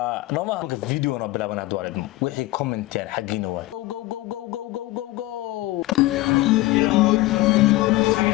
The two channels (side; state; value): right; quieter; 18.4 dB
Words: nooma marka video na bilaabana hadwaalid wixii comment yar xaqiina waa go